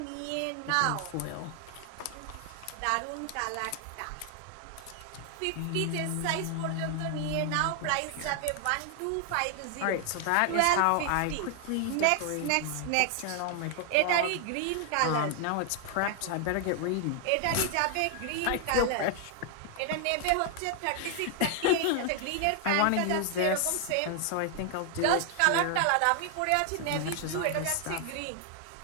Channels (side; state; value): both; different; correlation 0.00